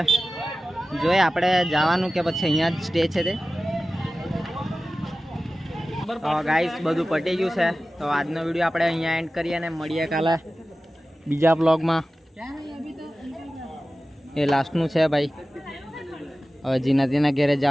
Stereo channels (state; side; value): normal; both; correlation 0.95